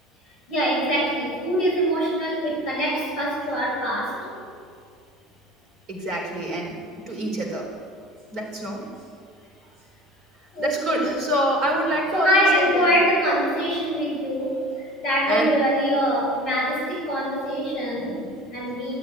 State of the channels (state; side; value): normal; both; correlation 0.40